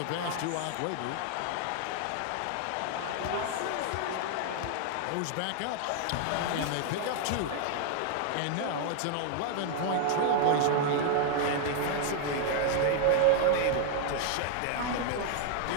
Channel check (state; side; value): different; both; correlation 0.00